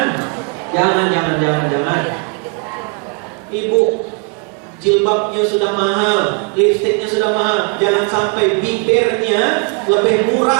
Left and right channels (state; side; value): quieter; left; 34.4 dB